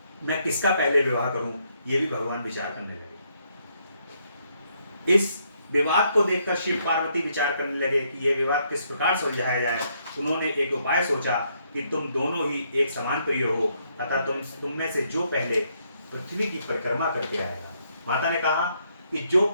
मैं किसका पहले विवाह करूं, ये भी भगवान विचार करने लगे। इस विवाद को देखकर शिव पार्वती विचार करने लगे कि ये विवाद किस प्रकार सुलझाया जाए। उन्होंने एक उपाय सोचा कि तुम दोनों ही एक समान प्रिय हो, अतः तुम में से जो पहले पृथ्वी की परिक्रमा करके आएगा। माता ने कहा कि जो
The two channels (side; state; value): both; inverted; correlation -0.73